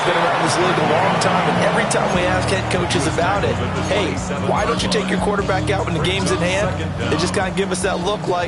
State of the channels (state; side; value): identical; both; correlation 1.00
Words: been around this league a long time, and every time we ask head coaches about it, hey, why don't you take your quarterback out when the game's in hand? They just kind of give us that look